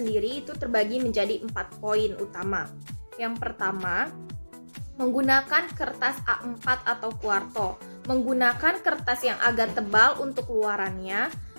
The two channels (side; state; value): both; inverted; correlation -1.00